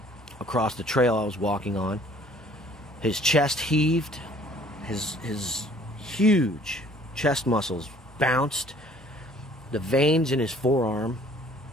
across the trail I was walking on. His chest heaved, his huge chest muscles bounced, the veins in his forearm,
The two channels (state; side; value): normal; both; correlation 0.56